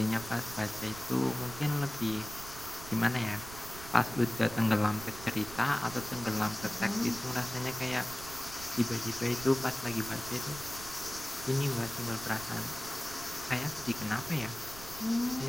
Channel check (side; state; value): right; noise; rumble, 14 dB below the sound